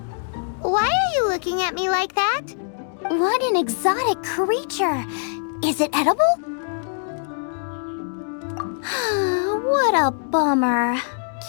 Why are you looking at me like that? What an exotic creature! Is it edible? What a bummer.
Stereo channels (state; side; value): silent; right; 62 dB below the other